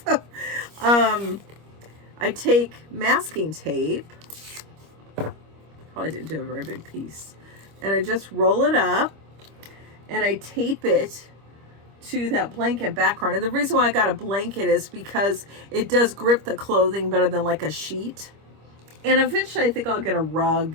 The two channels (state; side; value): late; left; 25 ms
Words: I take masking tape. Probably didn't do a very big piece. And I just roll it up and I tape it to that blanket background. And the reason why I got a blanket is because it does grip the clothing better than like a sheet. And eventually I think I'll get a